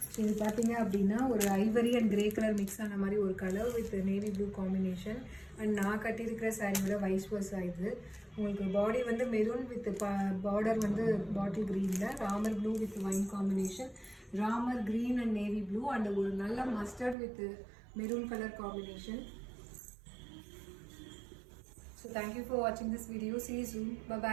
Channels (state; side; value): drops out; left; at 17.2 s